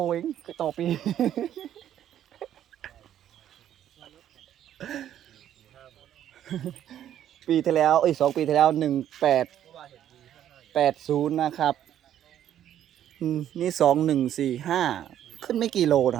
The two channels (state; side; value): quieter; left; 10.9 dB